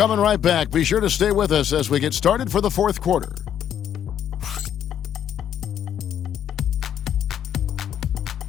right back. Be sure to stay with us as we get started for the 4th quarter.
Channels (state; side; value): quieter; right; 9.6 dB